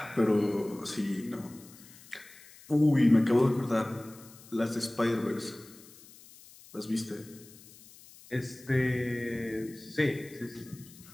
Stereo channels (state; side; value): noise; left; hiss, 22 dB below the sound